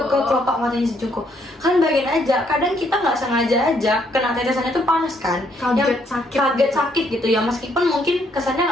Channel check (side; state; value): both; normal; correlation 0.71